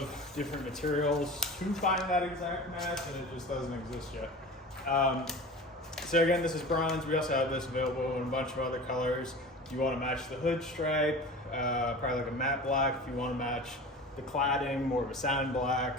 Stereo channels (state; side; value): normal; both; correlation 0.36